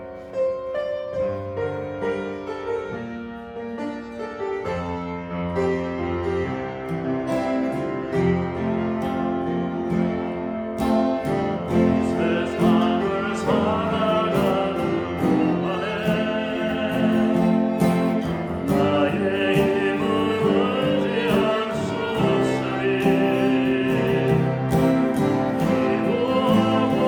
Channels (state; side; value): identical; both; correlation 1.00